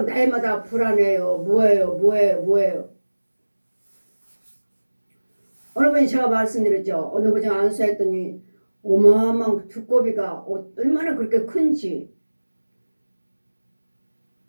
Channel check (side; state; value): both; inverted; correlation -1.00